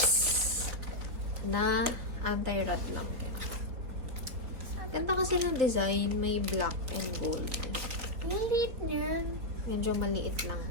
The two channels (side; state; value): left; late; 4.3 ms